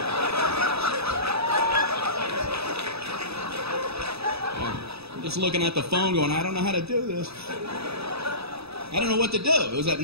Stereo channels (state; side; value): late; left; 0.78 ms